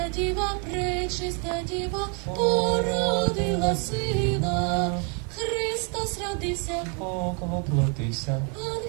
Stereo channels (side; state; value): left; quieter; 37.5 dB